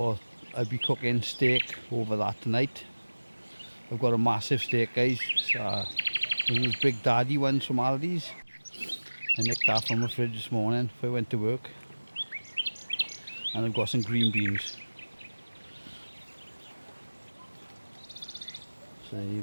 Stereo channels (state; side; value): inverted; both; correlation -1.00